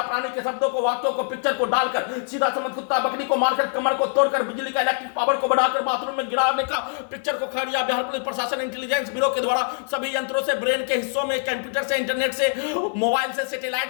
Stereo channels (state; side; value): silent; right; 63 dB below the other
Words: प्राणी के शब्दों को, वाक्यों को, पिक्चर को डालकर सीधा समझ कुत्ता बकरी को मारकर कमर को तोड़कर बिजली का इलेक्ट्रिक पावर को बढ़ाकर बाथरूम में गिराने का पिक्चर को खड़िया बिहार पुलिस प्रशासन इंटेलिजेंस ब्यूरो के द्वारा सभी यंत्रों से, ब्रेन के हिस्सों में, कंप्यूटर से, इंटरनेट से, मोबाइल से, सैटेलाइट